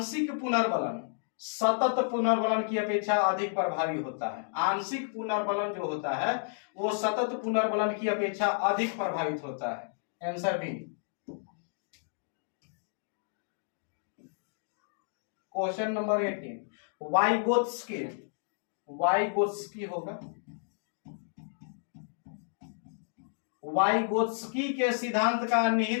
पुनर्बलन सतत पुनर्बलन की अपेक्षा अधिक प्रभावी होता है। आंशिक पुनर्बलन जो होता है वो सतत पुनर्बलन की अपेक्षा अधिक प्रभावित होता है। Answer B. Question number 18, Vygotsky, Vygotsky होगा, वाइगोत्स्की के सिद्धांत का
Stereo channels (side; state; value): right; silent; digital silence